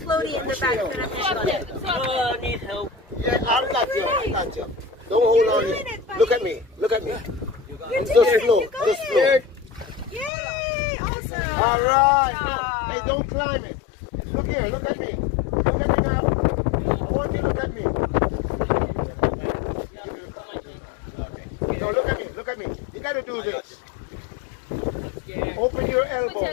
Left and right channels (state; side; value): drops out; right; at 10.3 s